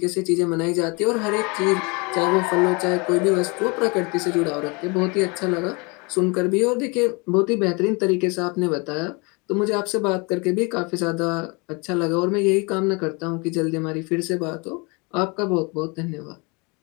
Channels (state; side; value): quieter; right; 29.4 dB